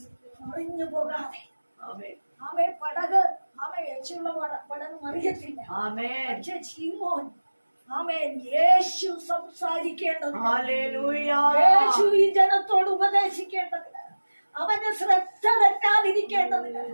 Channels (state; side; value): inverted; both; correlation -1.00